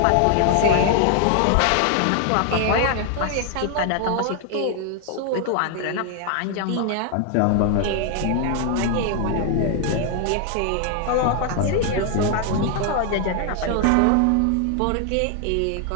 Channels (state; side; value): different; both; correlation 0.00